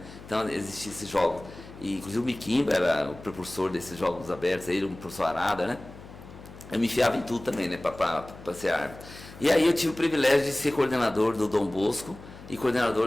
Então existiam esses jogos. E, inclusive o Miquimba era o propulsor desses jogos abertos, ele, o professor Arada, né? Eu me enfiava em tudo também, né? Para ser árbitro. E aí eu tive o privilégio de ser coordenador do Dom Bosco e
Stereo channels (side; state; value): left; noise; hum, 17 dB below the sound